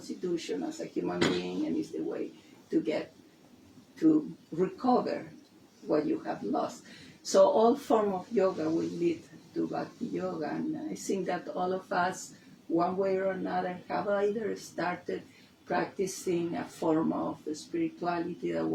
as a human being, and it's the way to get to recover what you have lost. So all form of yoga will lead to bhakti yoga, and I think that all of us, one way or another, have either started practicing a form of spirituality that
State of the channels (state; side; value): identical; both; correlation 1.00